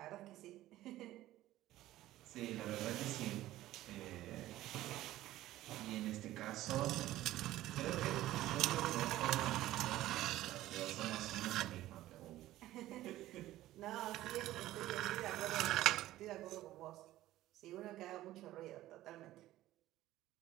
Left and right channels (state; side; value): quieter; left; 15.1 dB